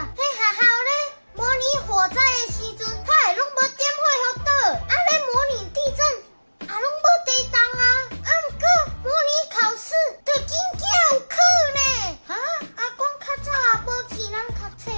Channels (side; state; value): both; inverted; correlation -1.00